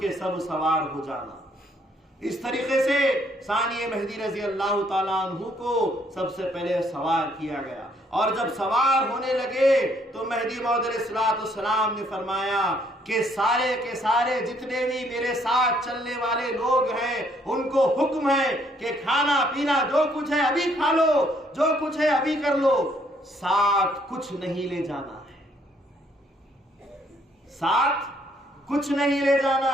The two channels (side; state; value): both; normal; correlation 0.67